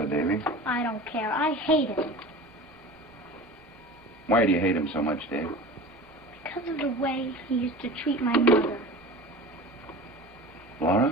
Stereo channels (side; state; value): both; normal; correlation 0.36